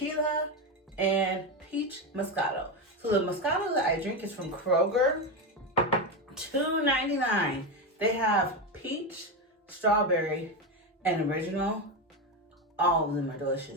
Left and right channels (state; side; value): normal; both; correlation 0.14